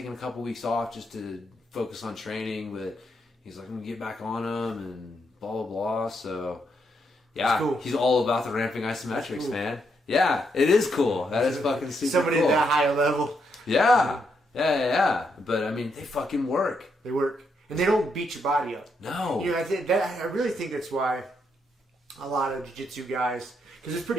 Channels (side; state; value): both; normal; correlation 0.78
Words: a couple weeks off just to focus on training, but he's like, I'm gonna get back on him and blah blah blah. So yeah, cool. He's all about the ramping isometrics, cool. Man. Yeah, it is cool. That is fucking super Somebody cool. at that high level. Yeah. But I mean, they fucking work. They work, and they don't beat your body up. No. I really think that's why a lot of jiu-jitsu guys, because it's